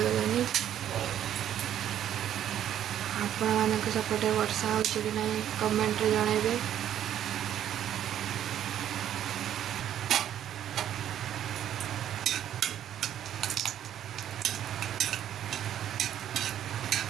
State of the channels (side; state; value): left; quieter; 10.7 dB